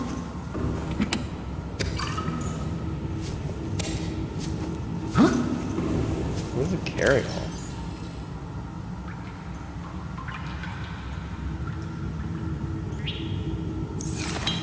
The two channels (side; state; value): both; identical; correlation 1.00